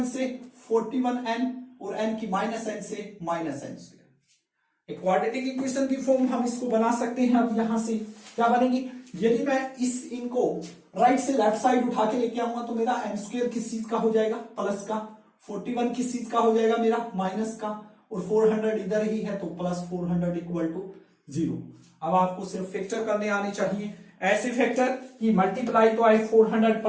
से 41n, और n की माइनस n से माइनस n स्क्वायर। एक क्वाड्रेटिक इक्वेशन की फॉर्म हम इसको बना सकते हैं। अब यहां से क्या बनेगी, यदि मैं इस इनको राइट से लेफ्ट साइड उठा के लेके आऊंगा तो मेरा n स्क्वायर किस चीज का हो जाएगा प्लस का, 41 किस चीज का हो जाएगा मेरा माइनस का, और 400 इधर ही है तो प्लस 400 इक्वल टू 0। अब आपको सिर्फ फैक्टर करने आने चाहिए, ऐसे फैक्टर कि मल्टीप्लाई तो आए 400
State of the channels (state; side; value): identical; both; correlation 1.00